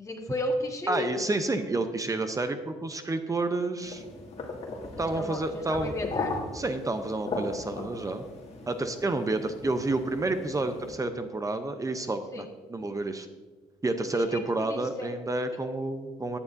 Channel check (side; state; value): both; normal; correlation 0.71